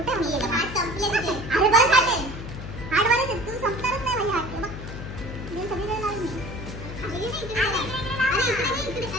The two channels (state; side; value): noise; left; hum, 9 dB below the sound